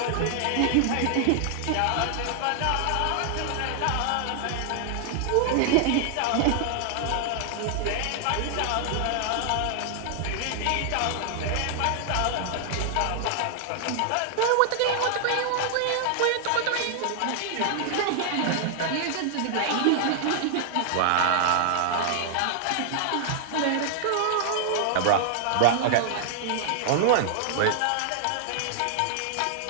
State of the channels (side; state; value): both; different; correlation 0.00